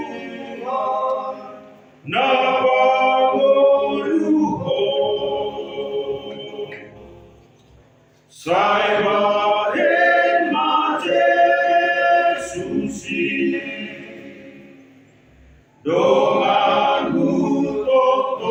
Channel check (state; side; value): identical; both; correlation 1.00